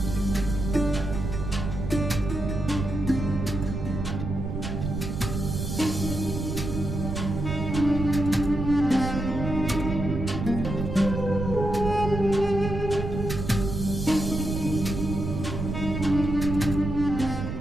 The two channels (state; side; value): noise; right; rumble, 4 dB below the sound